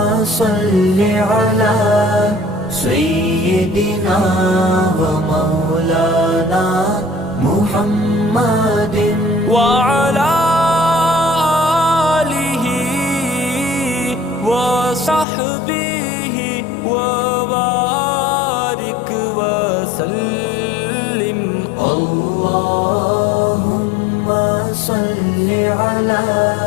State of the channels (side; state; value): right; drops out; at 15.2 s